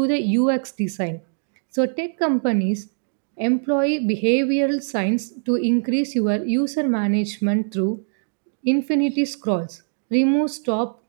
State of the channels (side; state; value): left; silent; digital silence